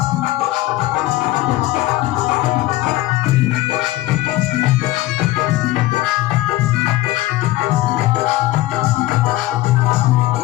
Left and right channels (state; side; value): quieter; right; 17.0 dB